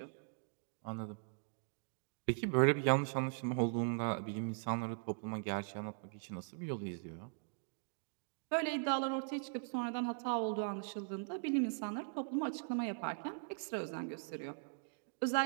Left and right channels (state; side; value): silent; left; digital silence